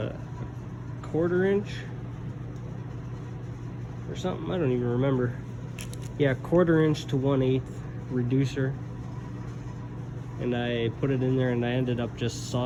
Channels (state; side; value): identical; both; correlation 1.00